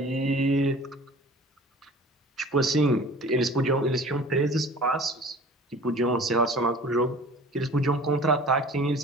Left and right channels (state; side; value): normal; both; correlation 0.44